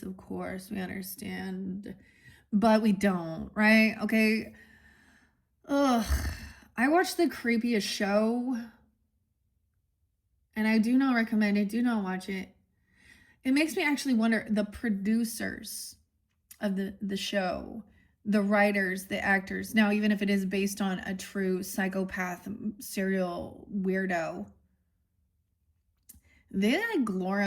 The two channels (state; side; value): identical; both; correlation 1.00